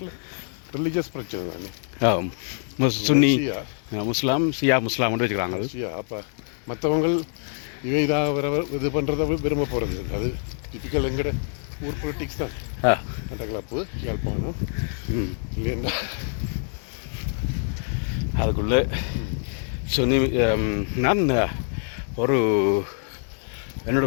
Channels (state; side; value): silent; right; 57 dB below the other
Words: ரிலீஜியஸ் பிரச்சனை தானே. சுன்னி முஸ்லாம் ஷியா முஸ்லாம் வச்சுக்கிறாங்க. அப்போ மற்றவங்க இதாக இது பண்ணுறத விரும்ப போகிறது அது டிப்பிக்கல் எங்கட ஊர் பொலிட்டிக்ஸ் தான். மட்டக்களப்பு, யாழ்ப்பாணம் இல்லையா அதுக்குள்ளே சுன்னி. நான் ஒரு என்னோட